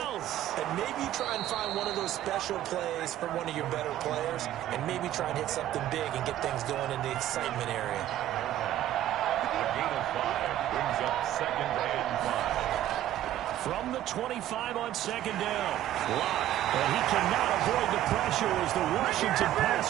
else. and maybe try and find one of those special plays from one of your better players, and maybe try and hit something big and get things going in the excitement area. A gain of 5 brings up 2nd and 5. From the 25 on 2nd down. Lock. And he cannot avoid the pressure as the Washington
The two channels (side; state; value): left; quieter; 12.8 dB